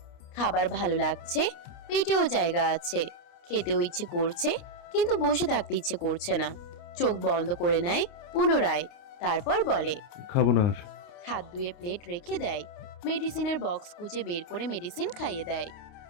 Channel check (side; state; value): right; late; 29 ms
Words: খাবার ভালো লাগছে, পেটেও জায়গা আছে, খেতেও ইচ্ছে করছে, কিন্তু বসে থাকতে ইচ্ছে করছে না। চোখ বন্ধ করে নেয় পুনরায়। তারপর বলে, খাবো না আর। হাত ধুয়ে প্লেট রেখে দেয়। মেডিসিনের বক্স খুঁজে বের করে মেডিসিন খাইয়ে দেয়।